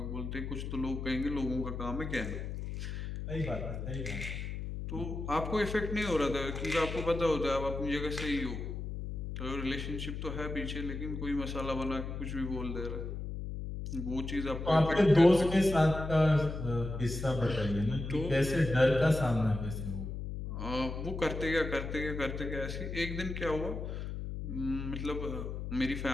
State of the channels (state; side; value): noise; left; hum, 6 dB below the sound